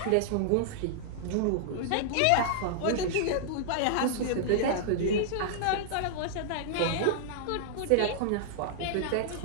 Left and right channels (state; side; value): different; both; correlation -0.01